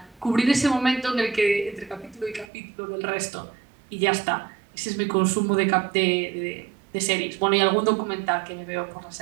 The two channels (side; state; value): left; drops out; at 2.5 s